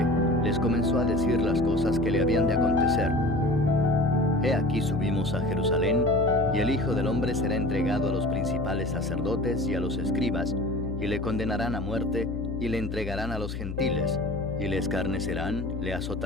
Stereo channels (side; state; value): left; noise; hum, 6 dB below the sound